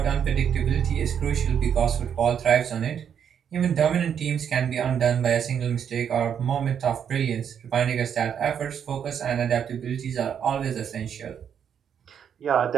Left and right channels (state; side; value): quieter; left; 8.2 dB